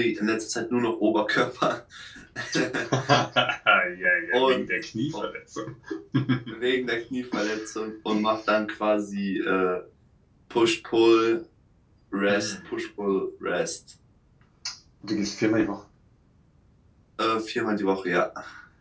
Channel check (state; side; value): identical; both; correlation 1.00